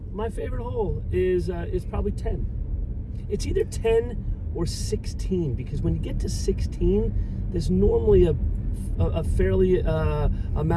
My favorite hole is probably 10. It's either 10 or 16, because when you get to 16, there's normally a fairly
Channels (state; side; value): identical; both; correlation 1.00